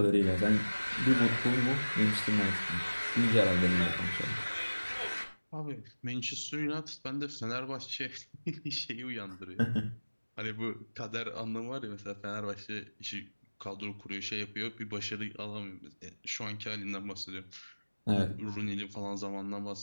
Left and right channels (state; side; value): inverted; both; correlation -1.00